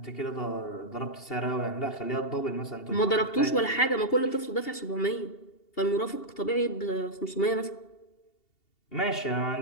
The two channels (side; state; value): right; late; 2.8 ms